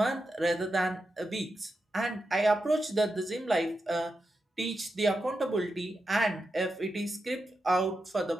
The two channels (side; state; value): both; normal; correlation 0.88